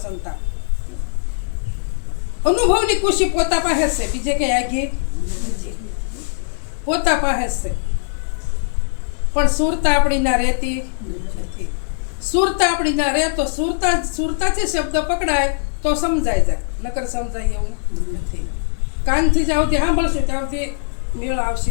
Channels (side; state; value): right; silent; digital silence